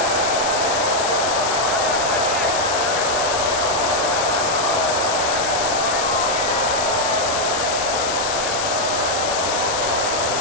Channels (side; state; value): left; noise; hiss, 3 dB below the sound